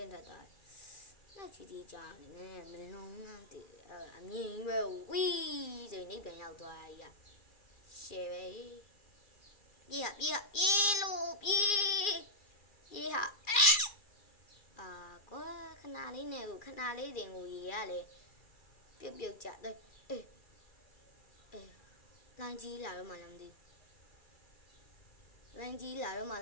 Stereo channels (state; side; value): late; right; 2.4 ms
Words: င်းထွက်သွားနောက်ချီတီကြာနေမလုံးနဲ့တေအမြင်ပဲဝီးဆိုနေပြန်ရောက်သွားရကြီးရှယ်ပဲပြေးဟာကွာခဏလေးတင်ကိုရေရလေပြုတ်ကြတယ်အေးလိုင်းကြီးလာတော့မှ